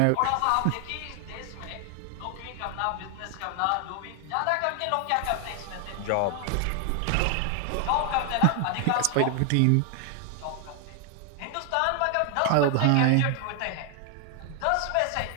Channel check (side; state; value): both; different; correlation 0.00